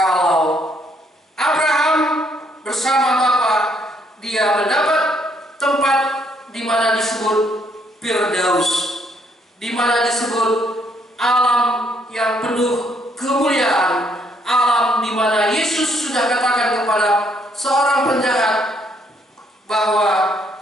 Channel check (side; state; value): both; normal; correlation 0.70